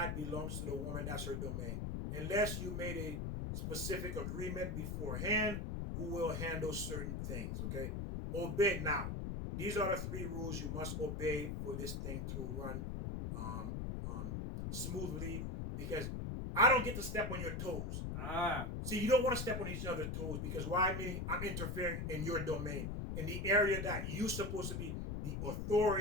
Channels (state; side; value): noise; left; rumble, 3 dB below the sound